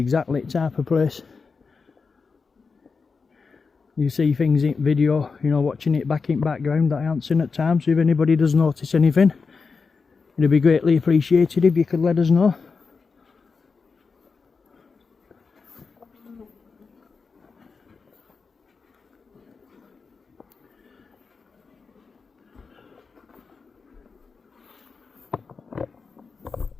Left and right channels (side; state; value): right; quieter; 4.9 dB